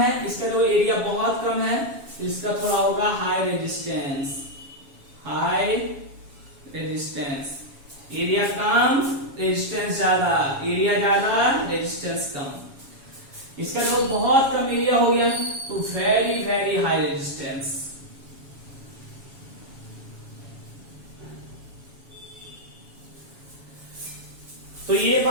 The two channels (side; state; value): left; late; 7.2 ms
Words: इसका जो एरिया बहुत कम है तो इसका थोड़ा होगा high resistance. High resistance, area कम रेजिस्टेंस ज्यादा, एरिया ज्यादा रेजिस्टेंस कम। इसका जो बहुत कम एरिया हो गया तो वेरी वेरी हाई रेजिस्टेंस। तो ये